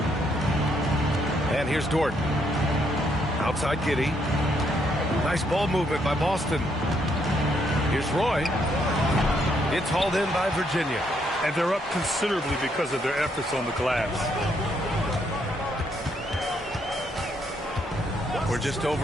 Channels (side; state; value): both; normal; correlation 0.73